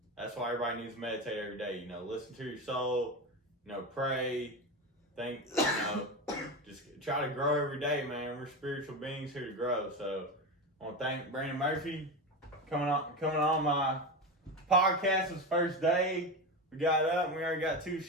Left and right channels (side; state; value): both; normal; correlation 0.20